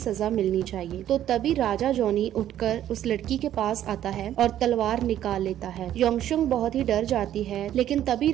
मिलनी चाहिए। तो तभी राजा जॉनी उठकर उस लड़की के पास आता है और तलवार निकाल लेता है। योंगशोंग बहुत ही डर जाती है, लेकिन तभी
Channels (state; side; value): quieter; left; 11.6 dB